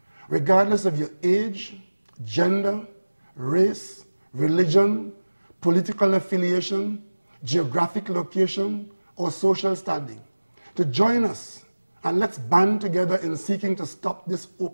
regardless of your age, gender, race, religion, political affiliation, geographic location, or social standing, to join us, and let's band together in seeking to stop this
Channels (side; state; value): both; inverted; correlation -1.00